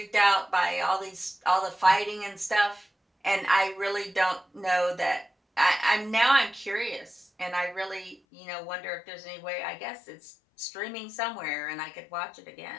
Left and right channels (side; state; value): right; drops out; at 8.2 s